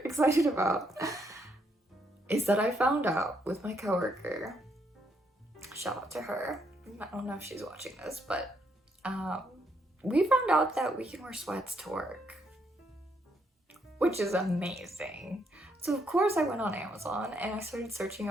excited about is that I found out with my coworker, shout out to her, I don't know if she's watching this, but we found out that we can wear sweats to work, which is amazing. So of course I went on Amazon and I started searching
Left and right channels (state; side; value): normal; both; correlation 0.74